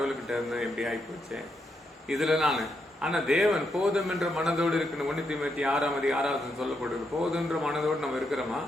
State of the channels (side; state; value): both; normal; correlation 0.80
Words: இருந்தேன், எப்படி ஆகிப்போச்சேன் இதில் நான். ஆனால் தேவன் போதும் என்ற மனதோடு இருக்கணும். 1 தீமோத்தேயு 6:6 சொல்லப்படுது. போதுன்ற மனதோடு நம்ம இருக்கிறோமா?